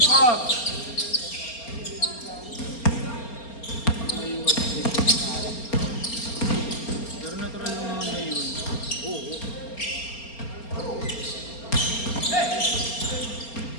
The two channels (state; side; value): late; right; 4.3 ms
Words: Pero natural lang naman na yun.